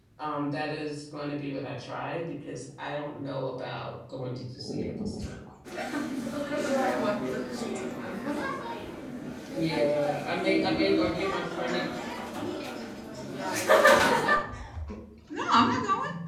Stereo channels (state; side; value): identical; both; correlation 1.00